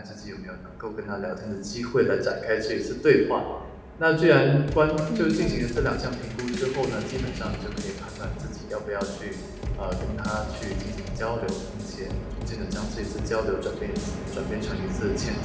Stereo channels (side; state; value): both; identical; correlation 1.00